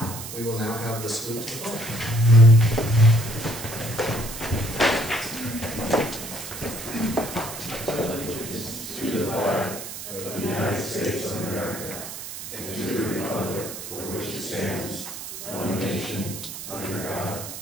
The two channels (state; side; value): noise; right; hiss, 9 dB below the sound